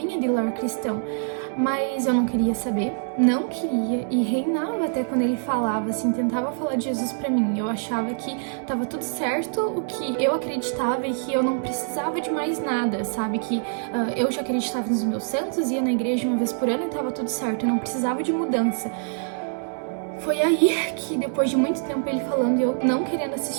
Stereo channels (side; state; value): left; silent; 62 dB below the other